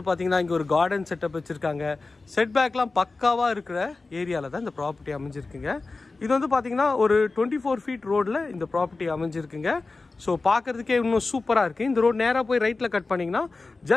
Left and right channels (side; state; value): right; quieter; 3.7 dB